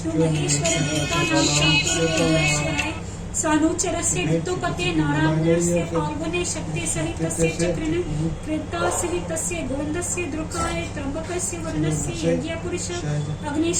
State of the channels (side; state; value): both; identical; correlation 1.00